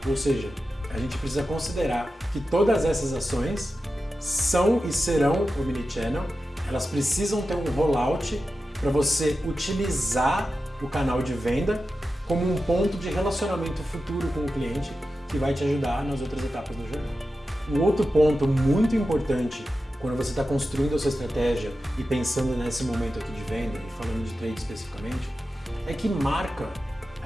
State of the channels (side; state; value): both; normal; correlation 0.92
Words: Ou seja, a gente precisa considerar que todas essas ações são e serão omnichannel. Elas precisam ter um rollout para você utilizar o canal de venda como um ponto de relacionamento futuro com o cliente que vai te ajudar nas outras etapas da jornada. Um outro ponto muito importante quando você está construindo a sua estratégia e pensando nesse momento aqui de venda e falando de trade especificamente, é que marca,